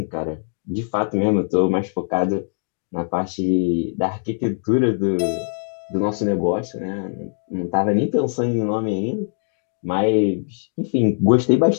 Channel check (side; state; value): right; silent; digital silence